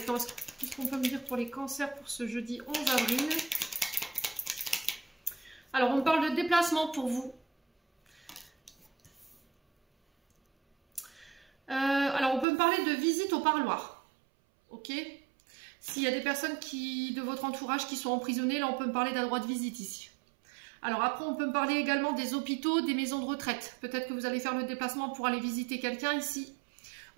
Qu'est-ce qu'on peut me dire pour les Cancers pour ce jeudi 11 avril? Alors, on parle de déplacement pour vous. Alors, on peut me parler de visite au parloir. Ok? S'il y a des personnes de votre entourage qui sont emprisonnées, là, on peut me parler d'un droit de visite ici. Alors après, on peut me parler également des hôpitaux, des maisons de retraite. Peut-être que vous allez faire le déplacement pour aller visiter quelqu'un ici.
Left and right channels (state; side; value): drops out; left; at 12.5 s